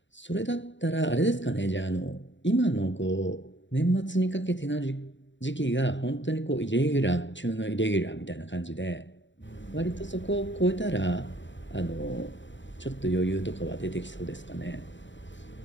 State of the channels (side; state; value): right; late; 0.54 ms